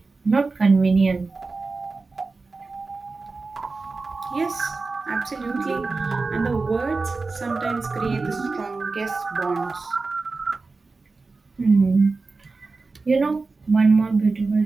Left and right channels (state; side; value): quieter; left; 3.9 dB